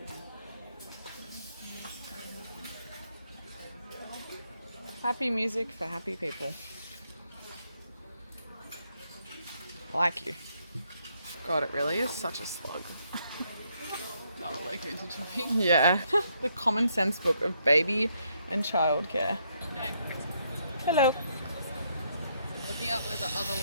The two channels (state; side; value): inverted; both; correlation -0.74